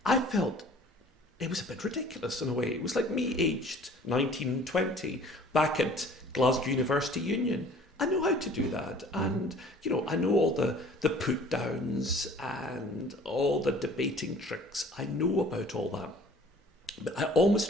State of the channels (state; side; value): normal; both; correlation 0.50